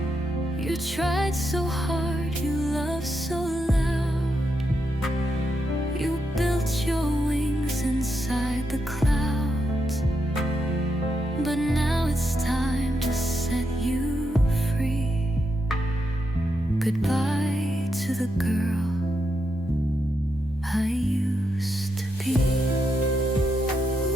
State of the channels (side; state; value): both; normal; correlation 0.83